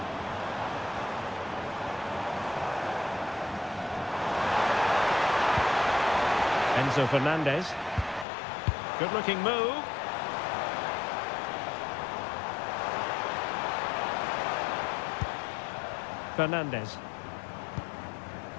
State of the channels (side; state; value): right; drops out; at 8.2 s